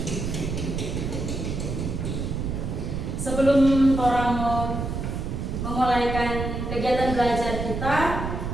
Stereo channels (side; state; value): right; noise; rumble, 3 dB below the sound